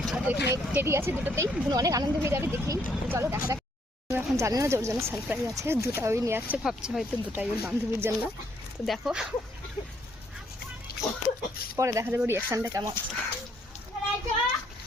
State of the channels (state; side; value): normal; both; correlation 0.69